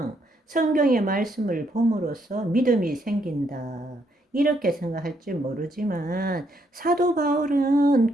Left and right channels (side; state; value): both; normal; correlation 0.74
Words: 성경의 말씀을 봄으로써 믿음이 생긴다. 이렇게 생각할지 모르지만 사도 바울은